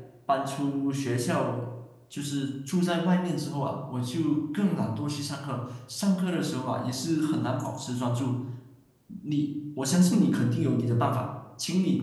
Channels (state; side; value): identical; both; correlation 1.00